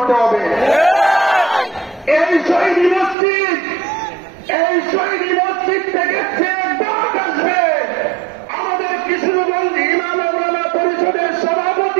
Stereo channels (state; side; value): drops out; left; at 3.2 s